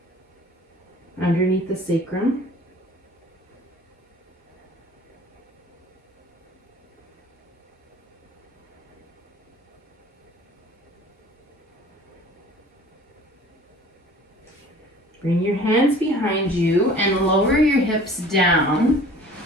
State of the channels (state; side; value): normal; both; correlation 0.48